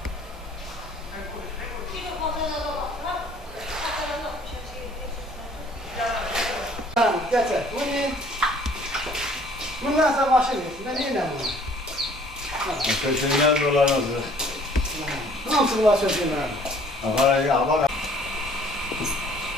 Bundan sonra başını yesin. Ben yine bunu. Köşeler dolanırdı. Nasıl bunlar sözüm ben? Nereye?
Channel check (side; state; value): both; normal; correlation 0.56